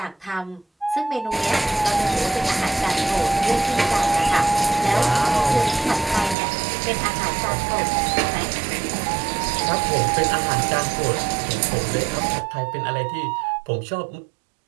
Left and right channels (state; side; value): drops out; left; at 6.4 s